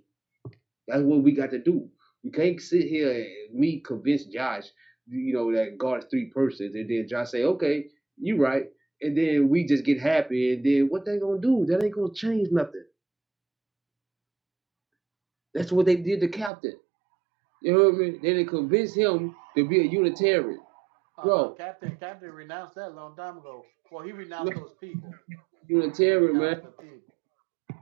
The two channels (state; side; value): drops out; left; at 16.5 s